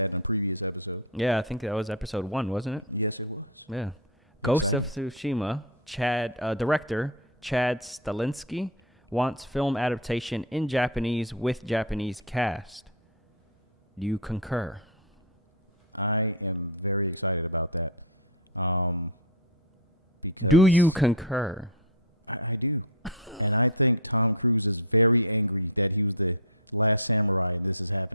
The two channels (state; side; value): normal; both; correlation 0.02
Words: in a previous episode. Yeah, I think that was episode 1, wasn't it? Yes, it was. Yeah. Ghost of Tsushima director Chad Stahelski wants film adaptation in Japanese with Japanese cast. Do you concur? I am very excited about that. Because do you concur? I do. And I think Tom Cruise is very angry that he was the last samurai and this is